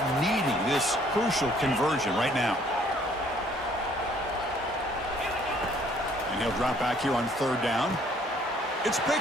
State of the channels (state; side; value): normal; both; correlation 0.61